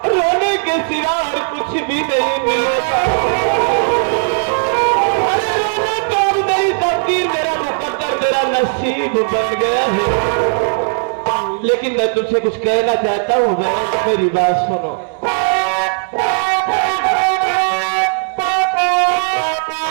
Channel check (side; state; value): left; silent; digital silence